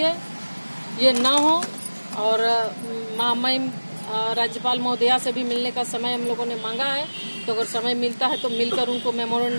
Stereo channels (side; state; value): both; inverted; correlation -1.00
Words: ये न हो, और महामहिम राज्यपाल महोदया से भी मिलने का समय हम लोगों ने मांगा है, तो अगर समय मिलता है तो मिलकर उनको